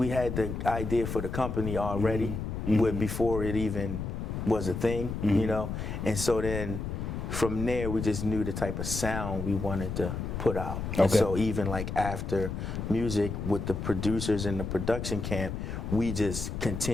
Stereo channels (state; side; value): noise; left; rumble, 4 dB below the sound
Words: had the idea for the company already, before it even was a thing, and so then from there we just knew the type of sound we wanted to put out. Okay. And so even like after Musiq with the producers in the production camp, we just